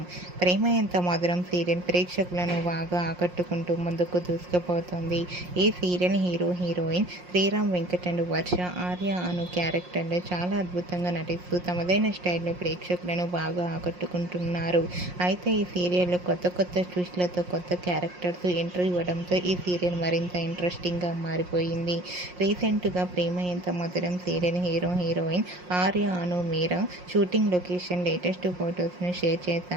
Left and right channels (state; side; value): late; left; 5.6 ms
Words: ప్రేమ ఎంత మధురం సీరియల్ ప్రేక్షకులను బాగా ఆకట్టుకుంటూ ముందుకు దూసుకుపోతుంది. ఈ serial heroine Sriram Venkat and Varsha, Arya Anu క్యారెక్టర్లో చాలా అద్భుతంగా నటిస్తూ తమదైన స్టైల్లో ప్రేక్షకులను బాగా ఆకట్టుకుంటున్నారు. అయితే ఈ సీరియల్లో కొత్త ట్విస్ట్లతో కొత్త క్యారెక్టర్స్ ఎంట్రీ ఇవ్వడంతో ఈ సీరియల్ మరింత ఇంట్రెస్టింగ్గా మారిపోయింది. రీసెంట్గా ప్రేమ ఎంత మధురం సీరియల్ హీరోయిన్ ఆర్య అను మీరా షూటింగ్ లొకేషన్ లేటెస్ట్ ఫొటోస్ను షేర్